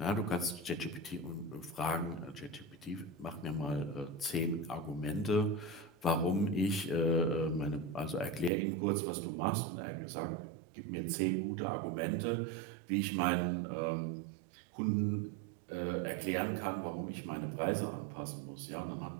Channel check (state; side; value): drops out; left; at 8.5 s